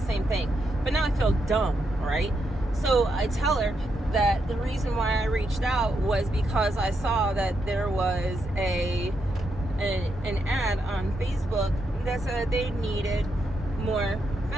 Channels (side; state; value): both; normal; correlation 0.81